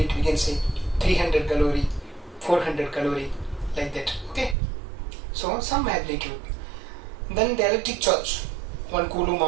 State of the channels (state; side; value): drops out; left; at 4.5 s